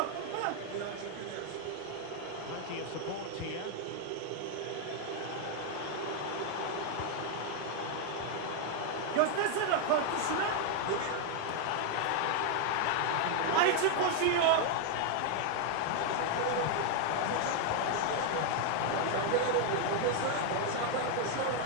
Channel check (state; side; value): different; both; correlation 0.00